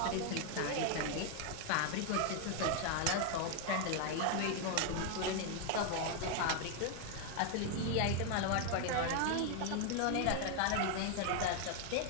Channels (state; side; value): different; both; correlation 0.00